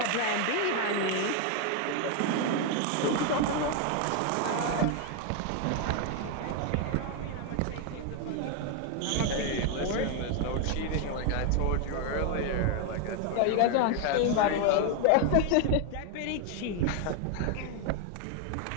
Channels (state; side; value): different; both; correlation 0.01